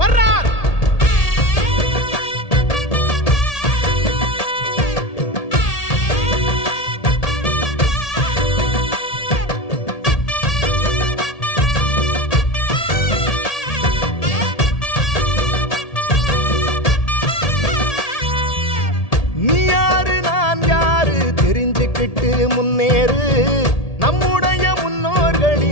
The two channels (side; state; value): right; late; 1.8 ms